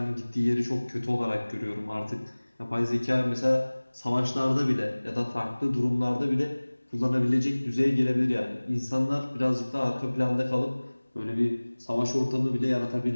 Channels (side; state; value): both; inverted; correlation -1.00